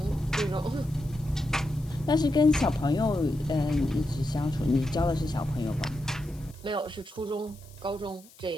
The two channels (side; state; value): left; noise; hiss, 24 dB below the sound